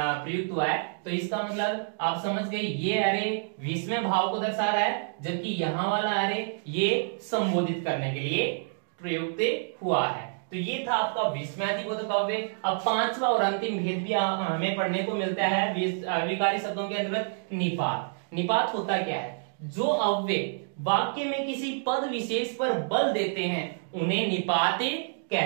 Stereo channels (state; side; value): silent; left; digital silence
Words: हुआ है। तो इसका मतलब आप समझ गए ये अरे विस्मय भाव को दर्शा रहा है, जबकि यहाँ वाला अरे ये संबोधित करने के लिए प्रयुक्त हुआ है। तो ये था आपका विस्मयादिबोधक अव्यय। अब पांचवा और अंतिम भेद भी हमें पढ़ने को मिलता है अविकारी शब्दों के अंतर्गत निपात। निपात होता क्या है, जो अव्यय वाक्य में किसी पद विशेष पर बल देते हैं उन्हें निपात